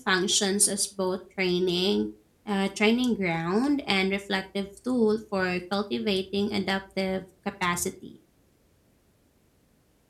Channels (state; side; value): identical; both; correlation 1.00